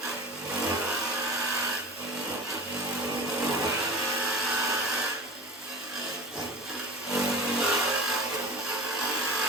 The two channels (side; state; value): both; normal; correlation 0.34